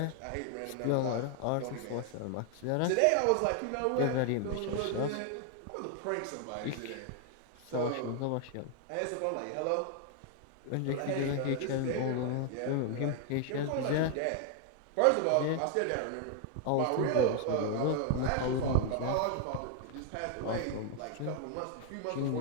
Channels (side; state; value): both; different; correlation 0.00